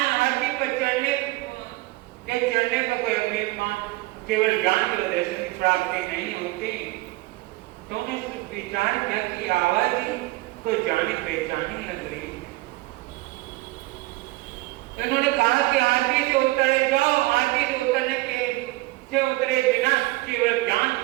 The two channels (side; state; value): left; quieter; 20.5 dB